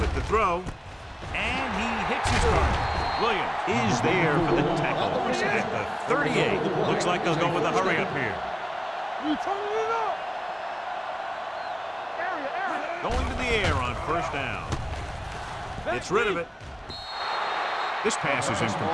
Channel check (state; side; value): identical; both; correlation 1.00